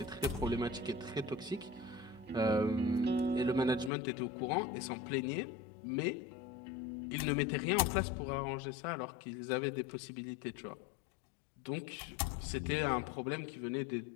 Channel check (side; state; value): right; drops out; at 3.9 s